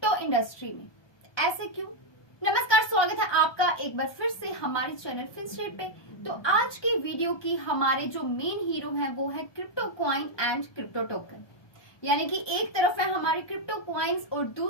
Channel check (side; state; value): right; late; 1.2 ms